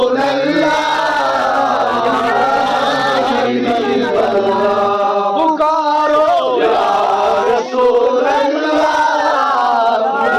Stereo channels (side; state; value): both; identical; correlation 1.00